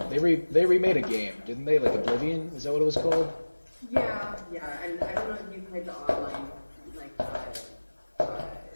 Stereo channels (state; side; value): inverted; both; correlation -1.00